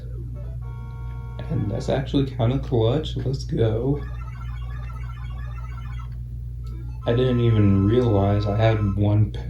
And that's actually kind of clutch. Let's go. I didn't even realize I had 1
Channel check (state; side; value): identical; both; correlation 1.00